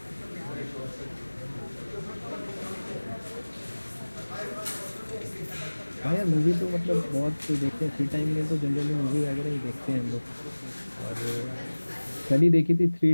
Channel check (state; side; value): inverted; both; correlation -1.00